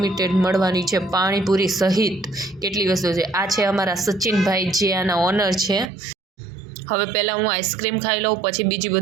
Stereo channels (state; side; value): drops out; left; at 5.9 s